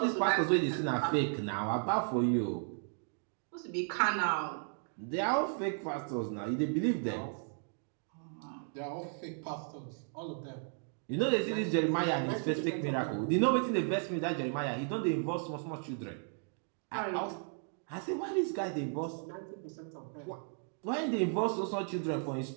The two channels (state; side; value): silent; left; 54 dB below the other